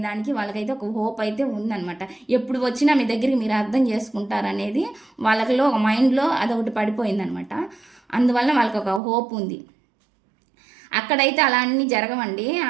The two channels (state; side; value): drops out; left; at 9.0 s